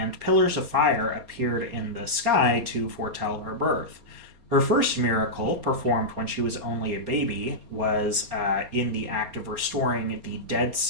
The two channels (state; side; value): late; left; 4.0 ms